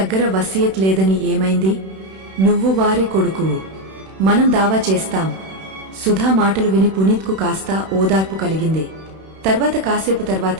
వసియత్ లేదని ఏమైంది? నువ్వు వారి కొడుకువు. మనం దావా చేస్తాం. సుధా మాటలు విని పునీత్కు కాస్త ఓదార్పు కలిగింది. తర్వాత కాసేపు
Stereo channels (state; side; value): late; left; 31 ms